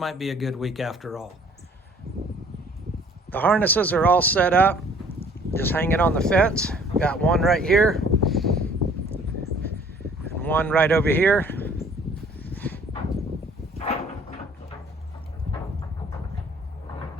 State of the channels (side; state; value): both; normal; correlation 0.56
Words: be a good week after all. The harnesses are all set up, just hanging on the fence. Got one right here and one right over here.